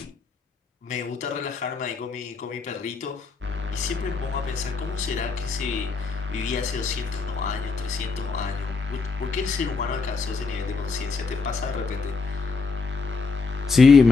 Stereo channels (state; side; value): quieter; right; 4.7 dB